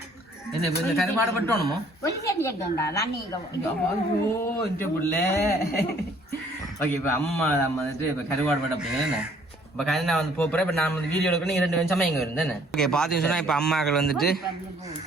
இந்த கருவாடு பட்டோணுமோ? ஓகே, இப்ப அம்மா வந்துட்டு இப்ப கருவாடு பட்ட அப்படிங்க. இப்ப கருணா வந்து போறேன். இப்ப நான் வந்து வீடியோ எடுக்கணும். 2 நிமிஷமா இங்க இருந்தேன். ஓகே, பாத்தீங்க சொன்னா இப்ப அம்மாக்கள் வந்துட்டு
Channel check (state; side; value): normal; both; correlation 0.60